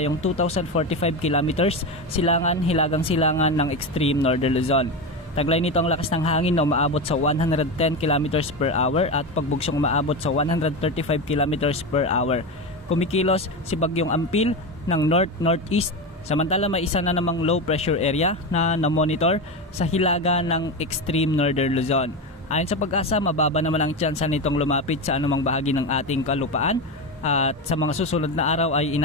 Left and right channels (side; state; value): both; normal; correlation 0.18